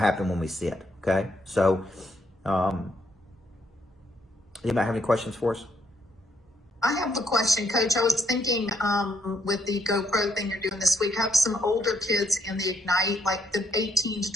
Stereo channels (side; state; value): both; normal; correlation 0.71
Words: when we sit. Okay. So, anybody have any questions for us? I have a question, Coach. I was thinking with the GoPro thing you're doing this week, have some older kids in the Ignite, like the 18 to